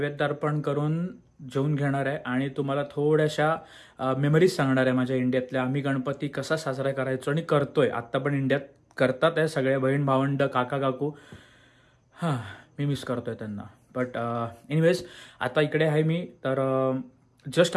अर्पण करून जेवून घेणार आहे आणि तुम्हाला थोड्याशा मेमरीज सांगणार आहे माझ्या इंडियातल्या. आम्ही गणपती कसा साजरा करायचो आणि करतोय, आत्ता पण इंडियात करतात आहे सगळे बहीण भावंड, काका काकू. हां, मी मिस करतोय त्यांना. बट एनिवेज आता इकडे आहे मी. तर जस्ट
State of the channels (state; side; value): identical; both; correlation 1.00